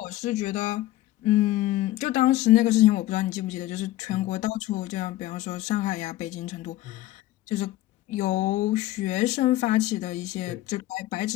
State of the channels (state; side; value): quieter; right; 15.7 dB